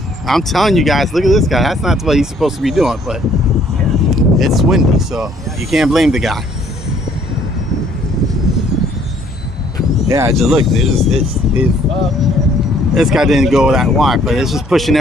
I'm telling you guys, look at this guy. That's not what he's supposed to be doing, but it's windy, so you can't blame the guy. Yeah, just look. This guy didn't go that wide, but it's just pushing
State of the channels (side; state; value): both; normal; correlation 0.62